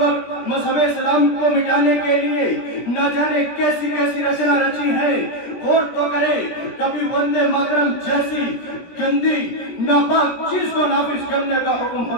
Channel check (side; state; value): right; late; 17 ms